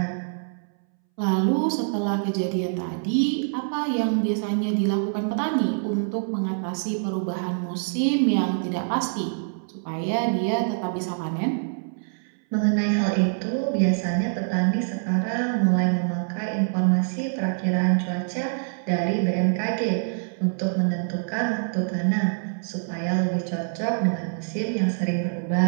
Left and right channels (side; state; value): left; silent; 62 dB below the other